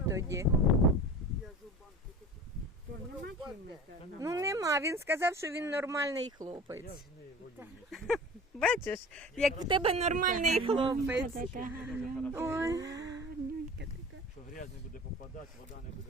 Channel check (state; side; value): normal; both; correlation 0.38